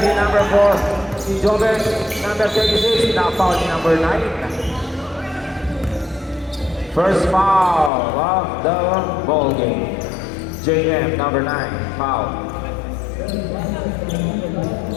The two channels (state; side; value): drops out; right; at 7.9 s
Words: number 4. Si Joven. Number 36. Na-foul ni number 9. First foul of the ball game. JM, number 9, foul.